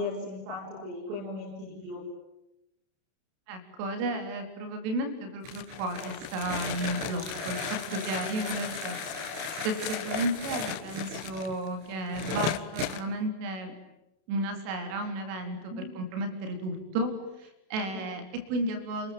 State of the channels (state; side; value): late; left; 32 ms